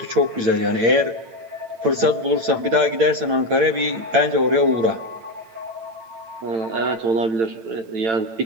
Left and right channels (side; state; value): left; late; 8.8 ms